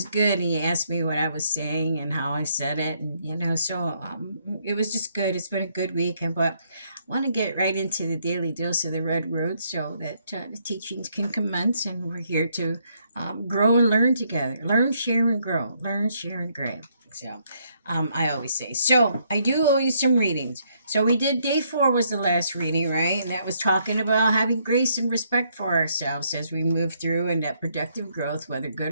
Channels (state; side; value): inverted; both; correlation -0.72